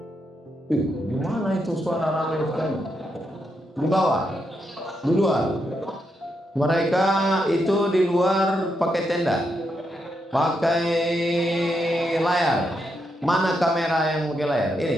Di mana itu suara ramai sekali? Di bawah, di luar. Mereka itu di luar pakai tenda, pakai layar. Mana kamera yang pakai layar?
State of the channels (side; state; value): both; normal; correlation 0.82